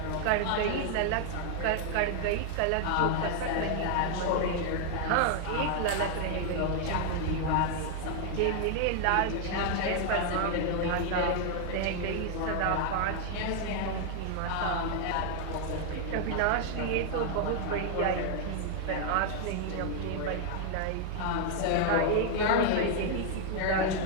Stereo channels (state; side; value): different; both; correlation 0.00